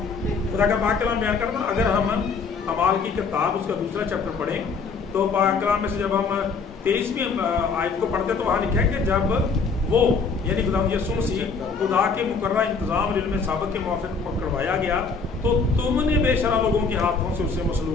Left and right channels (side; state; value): right; quieter; 4.8 dB